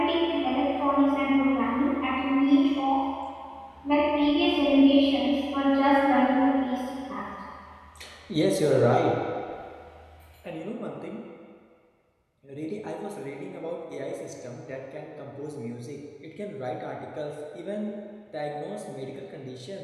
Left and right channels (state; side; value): identical; both; correlation 1.00